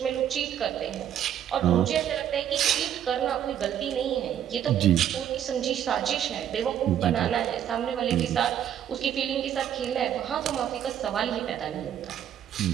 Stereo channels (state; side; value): quieter; left; 10.1 dB